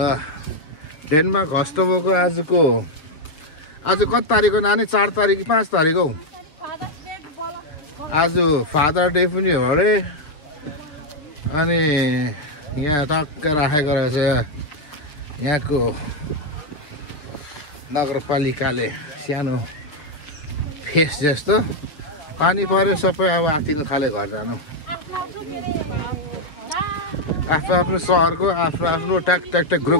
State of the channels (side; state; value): right; late; 7.0 ms